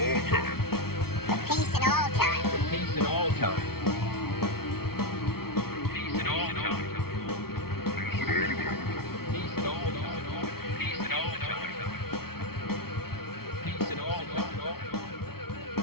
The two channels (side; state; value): right; late; 0.94 ms